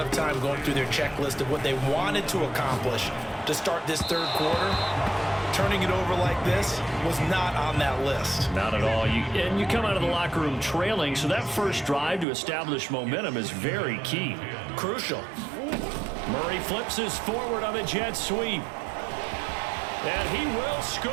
of time going through their checklist of what they wanted to accomplish to start this third quarter. Turning it over like this was not on that list. Not at all. And you come out of the locker room trailing, so that first drive to establish momentum is very key. Crucial. Murray flips his forward on the jet sweep. And he will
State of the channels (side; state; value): left; drops out; at 12.2 s